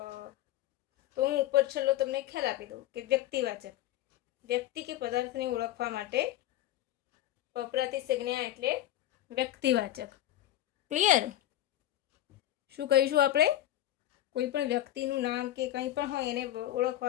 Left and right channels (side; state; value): right; quieter; 13.5 dB